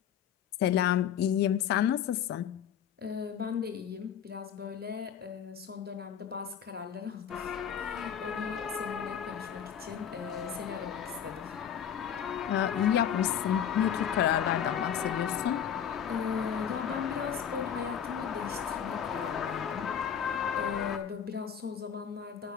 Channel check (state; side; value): quieter; right; 8.7 dB